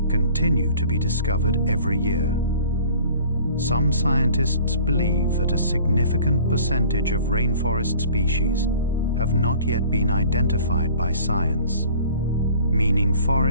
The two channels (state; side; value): inverted; both; correlation -0.49